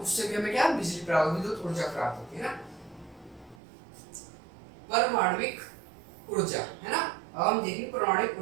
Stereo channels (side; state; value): left; drops out; at 3.6 s